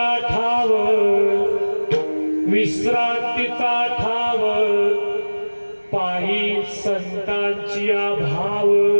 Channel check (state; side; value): inverted; both; correlation -1.00